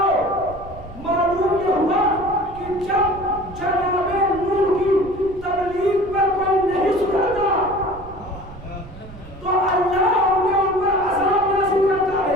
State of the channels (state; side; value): noise; right; rumble, 17 dB below the sound